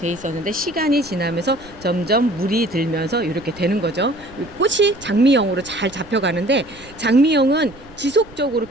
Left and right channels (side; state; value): right; noise; rumble, 22 dB below the sound